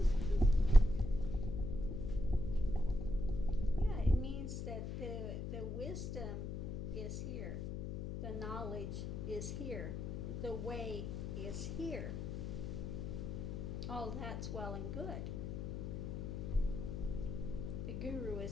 Yeah, it means that the wisdom is here. The knowledge is here. The way is here. All that's well and good. The guru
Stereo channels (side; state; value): left; noise; hum, 4 dB below the sound